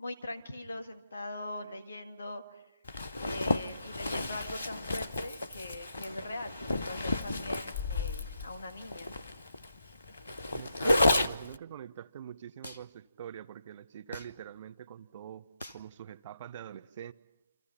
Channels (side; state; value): both; inverted; correlation -0.82